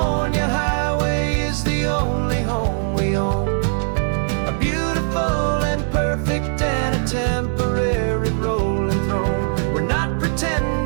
highway is the only home we own, a beautiful and perfect and a temporary rolling throne. We're not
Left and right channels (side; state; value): left; silent; digital silence